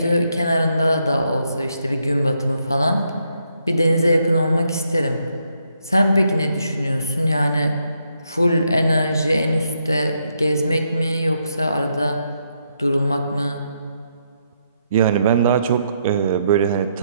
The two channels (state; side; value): inverted; both; correlation -0.77